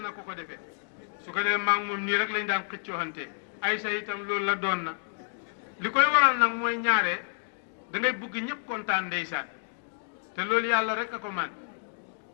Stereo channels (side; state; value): right; silent; digital silence